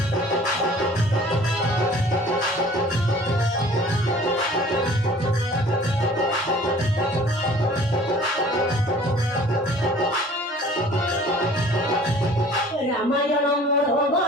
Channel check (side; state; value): both; normal; correlation 0.50